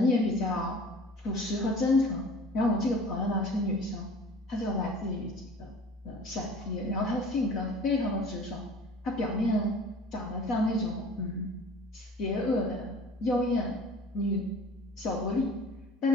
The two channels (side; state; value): both; normal; correlation 0.45